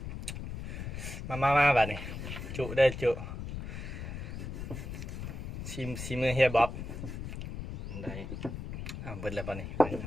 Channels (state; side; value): noise; left; rumble, 7 dB below the sound